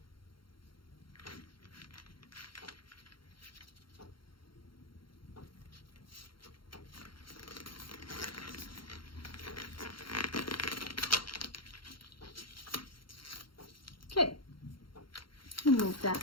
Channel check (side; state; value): right; late; 0.73 ms